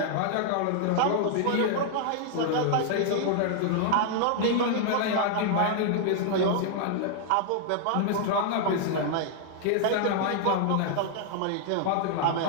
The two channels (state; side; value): different; both; correlation -0.01